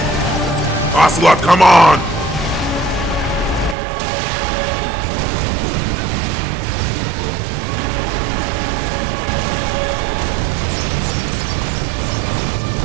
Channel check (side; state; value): left; drops out; at 3.8 s